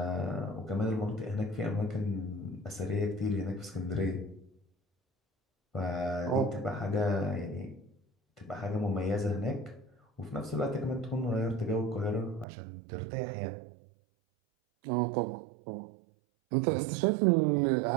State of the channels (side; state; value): left; drops out; at 12.5 s